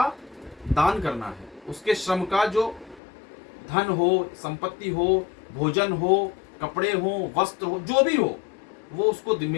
दान करना है, उसके श्रम का जो धन हो, संपत्ति हो, भोजन हो, कपड़े हो, वस्त्र हो, जो भी हो, वो उसको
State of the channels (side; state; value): right; drops out; at 3.0 s